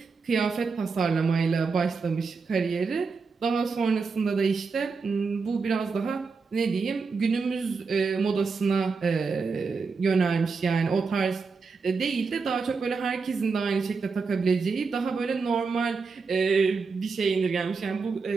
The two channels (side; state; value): left; quieter; 4.8 dB